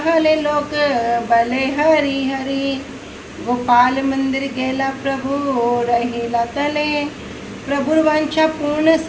लोक बले हरि हरि। गोपाल मंदिर गेला प्रभु रहिला तले, प्रभु वांछा पूर्ण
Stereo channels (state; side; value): identical; both; correlation 1.00